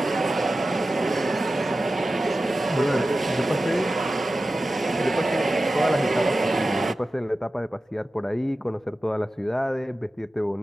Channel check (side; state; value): both; normal; correlation 0.94